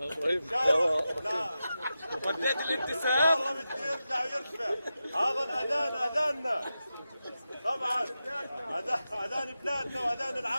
شاء الله. لا وديت الابتسام. والله بده يرجع ويرفع. هذا الاذان اذاننا. طبعا اذان بلادنا واذان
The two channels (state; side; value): inverted; both; correlation -0.91